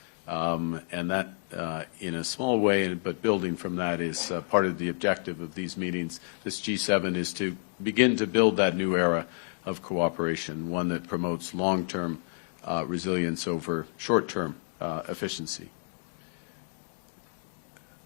And that, in a small way, but building from that, is part of the objective of these meetings. This G7 is to begin to build that new era of cooperation, one that promotes long-term resilience over short-term efficiency.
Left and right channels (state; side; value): silent; right; digital silence